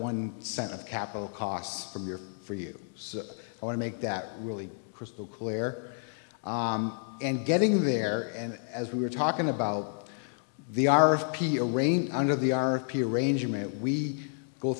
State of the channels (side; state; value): right; silent; 57 dB below the other